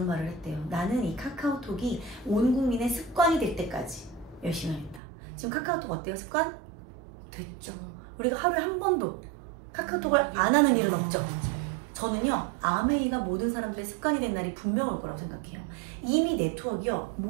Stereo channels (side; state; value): left; drops out; at 5.0 s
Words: 말을 했대요. 나는 이 카카오톡이 온 국민의 습관이 될 때까지 열심히 하겠다. 지금 카카오톡 어때요? 습관? 됐죠. 우리가 하루에 한 번도 카카오톡을 안 하는 일은 없죠. 저는요 아메이가 모든 사람들의 습관이 된 날이 분명 올 거라고 생각해요. 이미 네트워크요